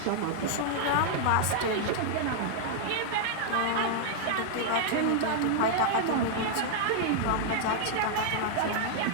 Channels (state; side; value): different; both; correlation -0.01